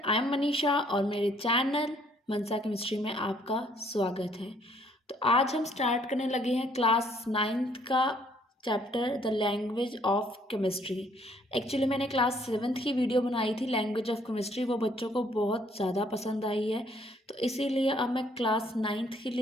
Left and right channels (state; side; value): normal; both; correlation 0.64